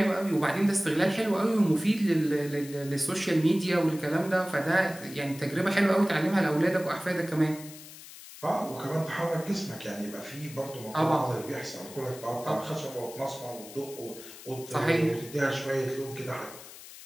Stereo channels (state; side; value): noise; left; hiss, 16 dB below the sound